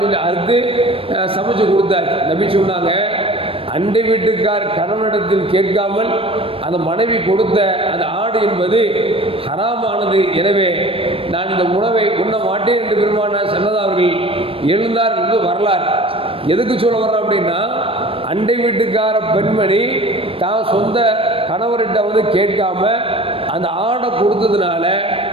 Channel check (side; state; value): left; late; 0.27 ms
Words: சொல்லி அறுத்து சமைச்சு கொடுத்தாச்சு. நபி சொன்னாங்க, அண்டை வீட்டுக்கார் கணவனிடத்தில் கேட்காமல் அந்த மனைவி கொடுத்த அந்த ஆடு என்பது ஹராமானது. எனவே நான் இந்த உணவை உண்ண மாட்டேன் என்று பெருமானார் ஸல்லல்லாஹு அவர்கள் எழுந்தார் என்று வரலாறு. எதுக்கு சொல்ல வர்றோம் அப்படின்னா, அண்டை வீட்டுக்கார பெண்மணி தான் சொந்த கணவர்கிட்ட வந்து கேட்காம அந்த ஆடை கொடுத்ததுனால